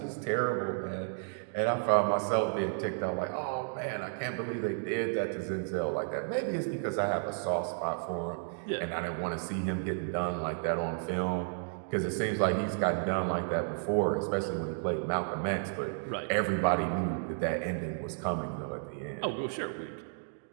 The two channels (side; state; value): left; silent; digital silence